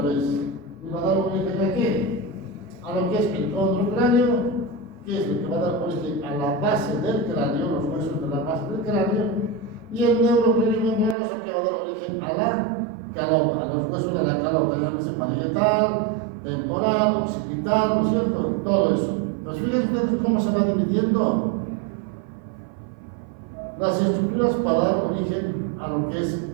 vez y va a dar origen ¿a qué? A lo que es el condrocráneo, que es lo que va a dar origen a la base del cráneo, los huesos de la base del cráneo, y el neurocráneo membranoso, es lo que va a dar origen a la calota, a los huesos de la calota, llámese parietal, temporal, occipital, ¿no es cierto? Todo eso. Pues fíjense ustedes cómo se va dividiendo las estructuras para dar origen a lo que es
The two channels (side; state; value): left; drops out; at 11.2 s